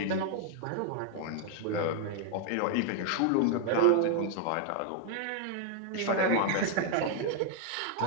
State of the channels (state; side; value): different; both; correlation 0.00